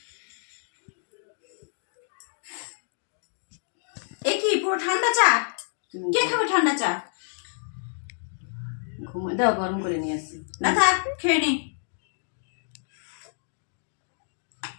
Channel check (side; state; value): right; silent; digital silence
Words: এ কি পুরো ঠান্ডা চা? কে খাবে ঠান্ডা চা? ঘুমাই দাও, গরম করে নিয়ে আসছি। না থাক, খেয়ে নি।